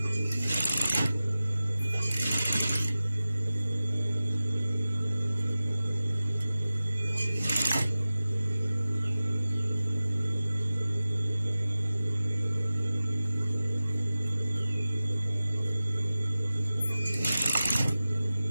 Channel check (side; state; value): both; inverted; correlation -0.96